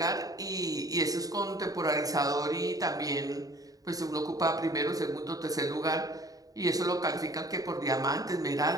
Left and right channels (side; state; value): left; late; 0.18 ms